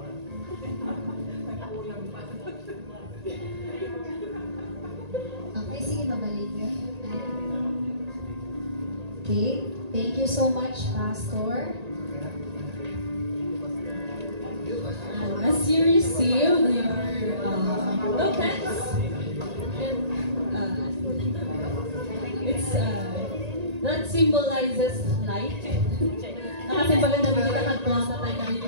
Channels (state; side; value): late; left; 1.8 ms